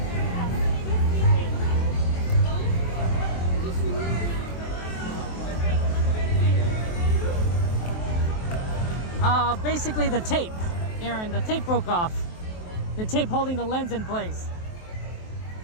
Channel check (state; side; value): late; right; 23 ms